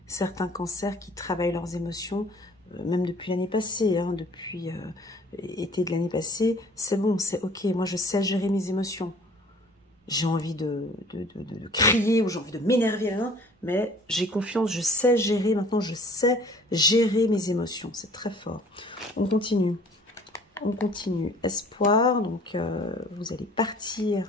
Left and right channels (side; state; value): both; normal; correlation 0.51